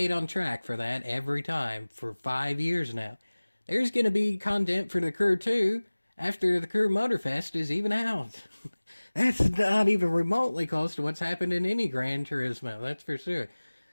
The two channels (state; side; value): inverted; both; correlation -1.00